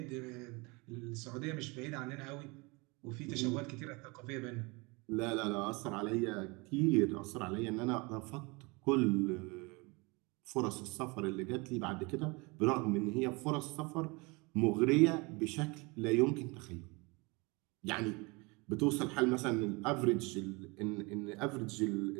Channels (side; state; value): left; quieter; 27.1 dB